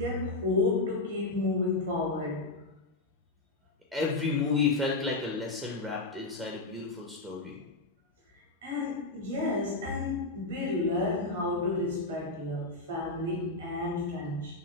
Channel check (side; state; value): right; quieter; 3.2 dB